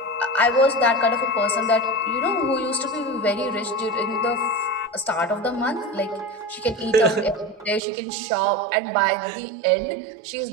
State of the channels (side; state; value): left; drops out; at 7.8 s